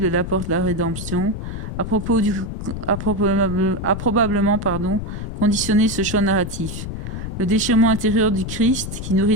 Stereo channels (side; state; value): left; noise; rumble, 6 dB below the sound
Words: l'apporte la rédemption, a probablement conditionné ce choix narratif. Le déchirement intérieur du Christ, qui nourrit